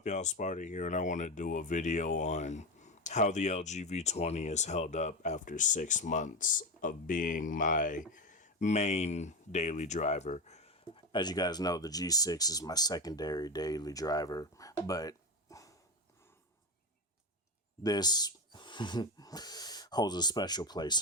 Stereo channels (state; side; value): normal; both; correlation 0.16